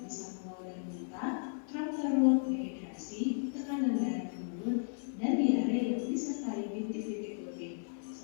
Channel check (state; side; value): silent; right; 55 dB below the other